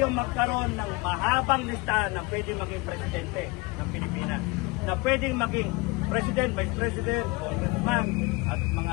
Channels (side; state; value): right; quieter; 25.1 dB